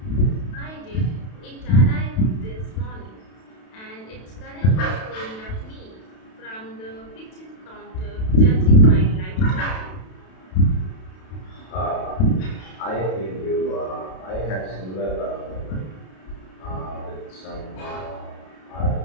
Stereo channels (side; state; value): right; late; 32 ms